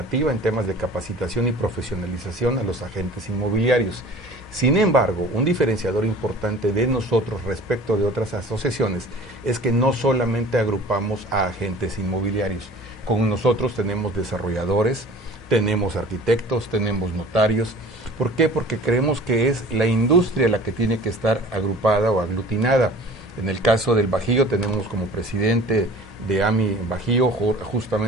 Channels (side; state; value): both; normal; correlation 0.45